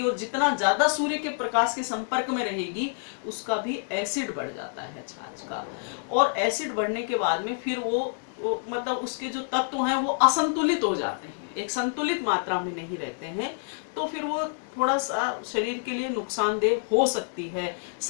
और जितना ज्यादा सूर्य के प्रकाश के संपर्क में रहेगी उसका भी एसिड बढ़ जाता है छाछ का। और एसिड बढ़ने के बाद में फिर वो मतलब उसके जो तत्व हैं वो असंतुलित हो जाते हैं, एक संतुलित मात्रा में नहीं रहते हैं, तो फिर वो थोड़ा सा शरीर के लिए नुकसानदेह हो सकती है।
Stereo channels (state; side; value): silent; right; digital silence